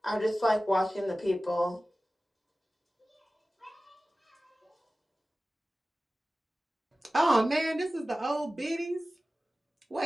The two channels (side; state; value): both; normal; correlation 0.96